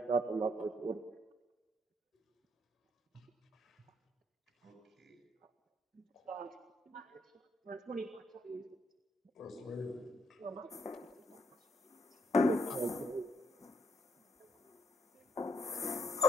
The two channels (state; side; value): normal; both; correlation 0.73